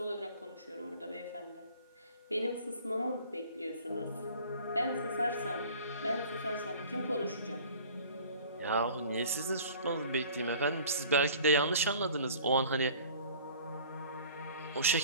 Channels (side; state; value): both; inverted; correlation -0.47